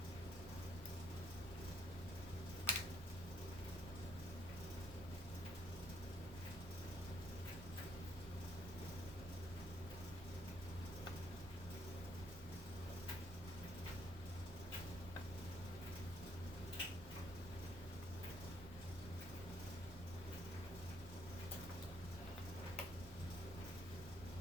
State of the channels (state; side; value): normal; both; correlation 0.68